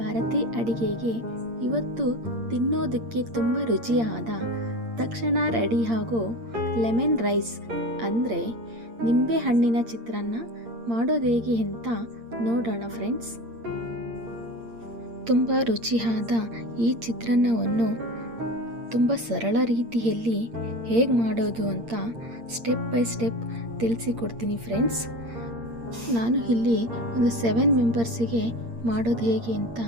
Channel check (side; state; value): left; late; 8.7 ms